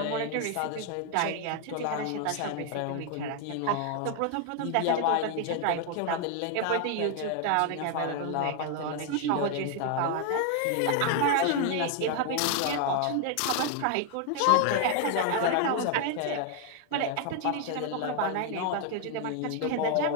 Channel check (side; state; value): both; different; correlation 0.00